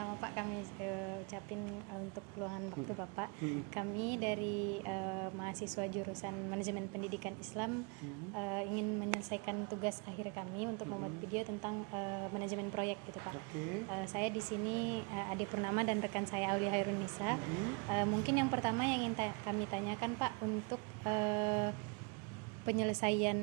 Pak, kami ucapin untuk luangan waktu Bapak. Kami dari mahasiswa jurusan Manajemen Pendidikan Islam ingin menyelesaikan tugas akhir kami untuk membuat video tentang manajemen proyek gitu Pak. Saya di sini Ade Purnama dan rekan saya Aulia Hairunisa. Mungkin yang pertama yang ingin kami tanyakan Pak, untuk penyelesaian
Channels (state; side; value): quieter; left; 31.9 dB